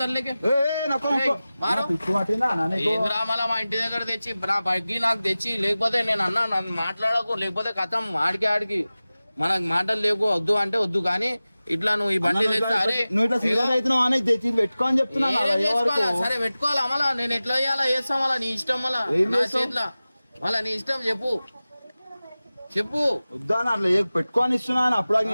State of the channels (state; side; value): inverted; both; correlation -0.97